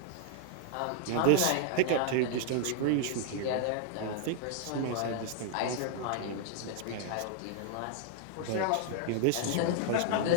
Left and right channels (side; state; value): both; different; correlation -0.01